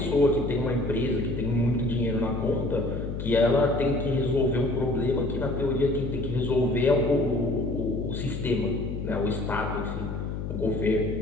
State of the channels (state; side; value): noise; left; hum, 5 dB below the sound